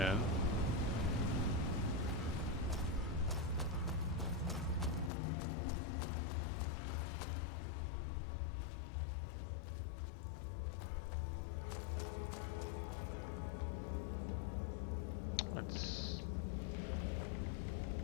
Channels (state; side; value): drops out; right; at 5.1 s